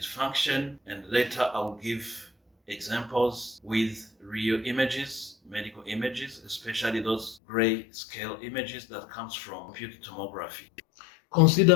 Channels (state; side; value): drops out; right; at 7.4 s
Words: function, and later I'll give examples with real images, medical images, especially those gray scale images that comes from computed tomography.